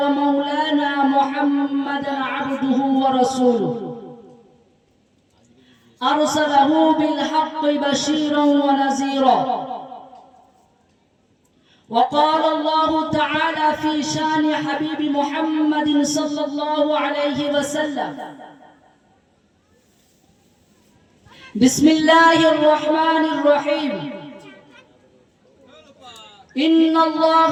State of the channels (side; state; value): both; identical; correlation 1.00